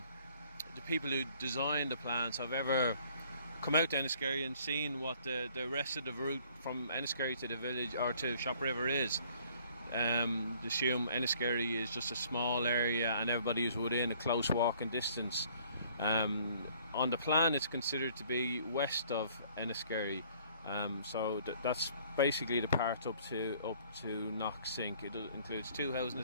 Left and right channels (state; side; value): inverted; both; correlation -0.58